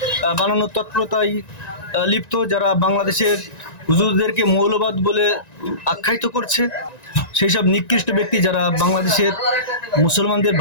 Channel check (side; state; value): right; late; 1.9 ms